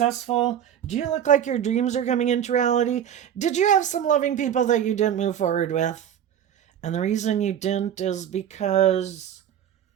Do you look like your dreams are coming into reality? Did you have some loving people that you didn't move forward with? And the reason you didn't is because,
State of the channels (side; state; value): left; quieter; 9.6 dB